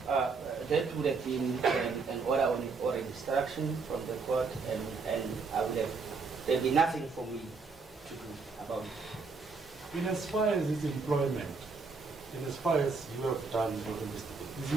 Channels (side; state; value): left; quieter; 4.6 dB